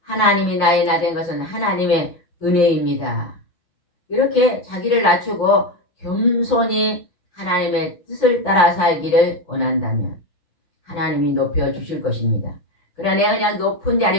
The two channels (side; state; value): right; late; 5.7 ms